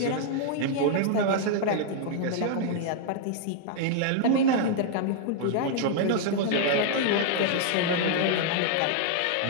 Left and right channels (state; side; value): different; both; correlation -0.01